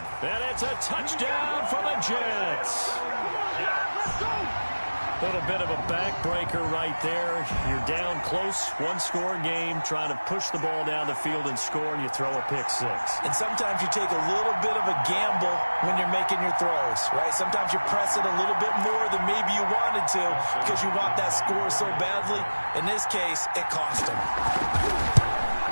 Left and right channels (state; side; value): inverted; both; correlation -1.00